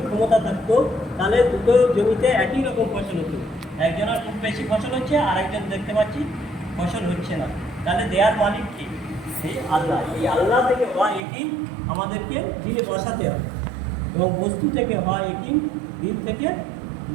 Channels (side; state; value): left; drops out; at 11.2 s